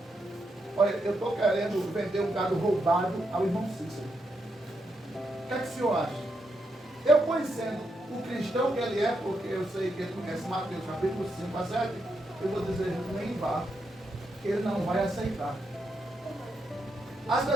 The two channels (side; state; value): both; normal; correlation 0.82